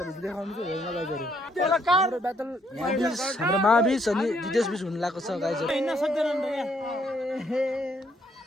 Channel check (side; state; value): both; normal; correlation 0.70